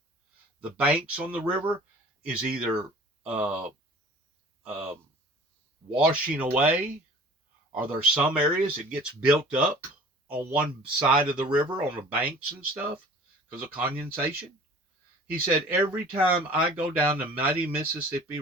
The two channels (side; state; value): both; normal; correlation 0.47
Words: The banks on the river is either washing away, or there's some areas it gets built up on one side of the river on the banks and stuff because of condensation. He said, every time I go down the mighty Mississippi